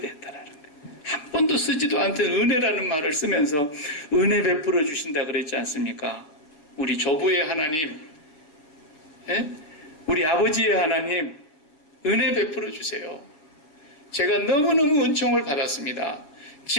거예요. 한 번도 쓰지도 않던 은혜라는 말을 쓰면서 은혜 베풀어 주신다 그랬지 않습니까? 우리 조부의 하나님, 우리 아버지의 하나님, 은혜 베풀어 주세요. 제가 너무너무 은총을 받았습니다.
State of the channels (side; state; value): right; late; 7.1 ms